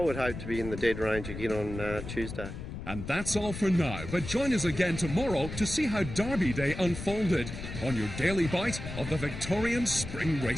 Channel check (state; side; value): noise; left; rumble, 8 dB below the sound